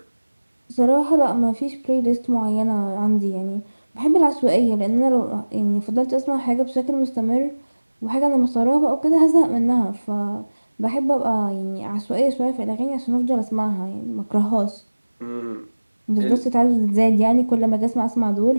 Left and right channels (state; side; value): inverted; both; correlation -1.00